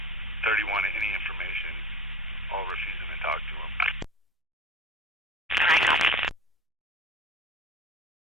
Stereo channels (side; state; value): both; normal; correlation 0.39